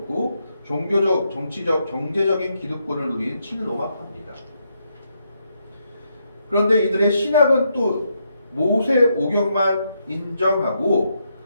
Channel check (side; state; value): both; inverted; correlation -0.79